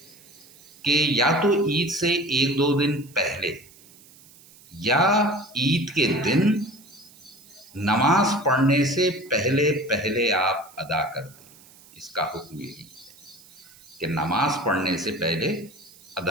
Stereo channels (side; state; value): right; noise; hiss, 24 dB below the sound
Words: کہ یا تو عید سے 1-2 دن پہلے یا عید کے دن نماز پڑھنے سے پہلے پہلے آپ ادا کر دیں۔ اس کا حکم یہی ہے کہ نماز پڑھنے سے پہلے